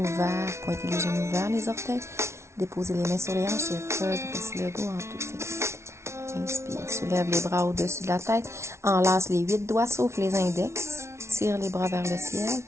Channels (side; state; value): left; late; 0.13 ms